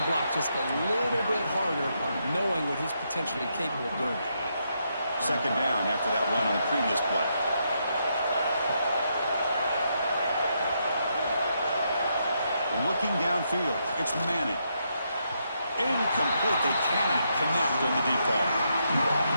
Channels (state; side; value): inverted; both; correlation -0.79